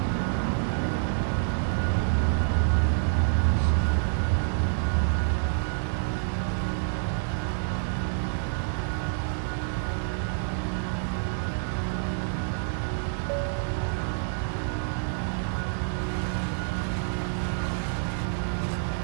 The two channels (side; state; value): left; silent; digital silence